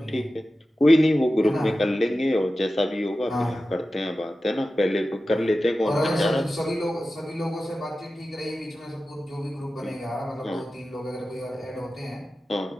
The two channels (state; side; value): normal; both; correlation 0.94